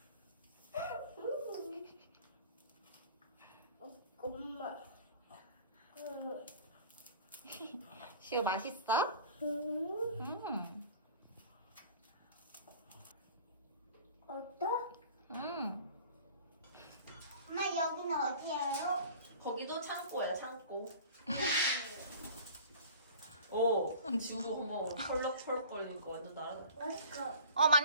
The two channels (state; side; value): inverted; both; correlation -0.43